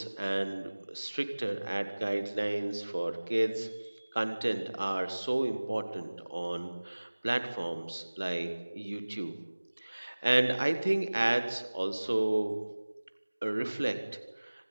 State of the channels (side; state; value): both; inverted; correlation -1.00